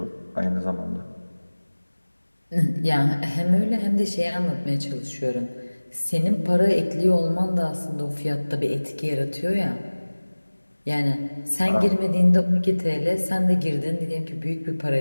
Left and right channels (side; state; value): both; inverted; correlation -1.00